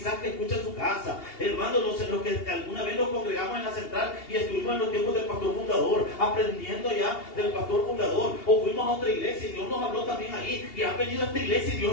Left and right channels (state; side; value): late; right; 2.8 ms